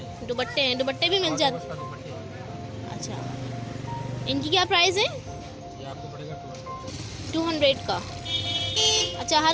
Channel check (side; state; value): both; identical; correlation 1.00